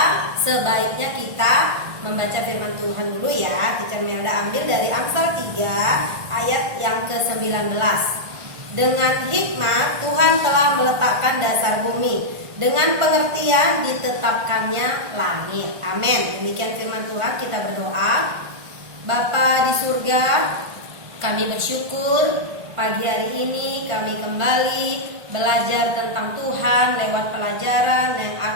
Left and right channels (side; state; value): left; late; 1.5 ms